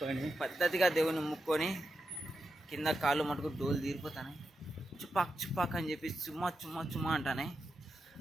పద్ధతిగా దేవుని ముక్కొని కింద కాళ్ళు మటుకు డోలు తీరిపోతానే చుపాక్ చుపాక్ అని చెప్పి చుమ్మా చుమ్మా చుమ్మా అంటానే.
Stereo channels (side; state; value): both; normal; correlation 0.87